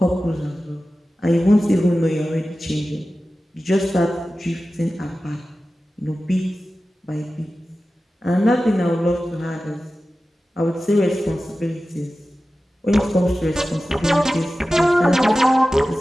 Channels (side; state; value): both; normal; correlation 0.95